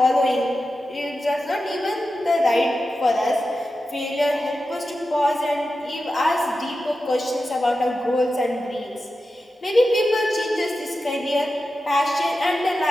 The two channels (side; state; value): both; normal; correlation 0.92